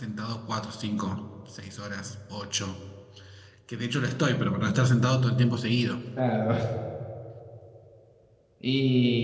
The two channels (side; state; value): both; identical; correlation 1.00